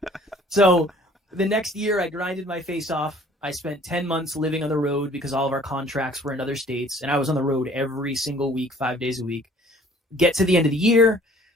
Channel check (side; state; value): both; normal; correlation 0.54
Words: So the next year, I grinded my face off. I spent 10 months living on the road because all of our contracts were in other states, and I was on the road every single week, 5 days a week. Get to the end of the year,